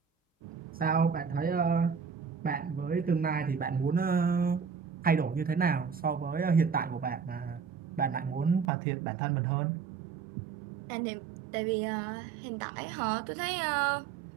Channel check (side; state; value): left; drops out; at 8.7 s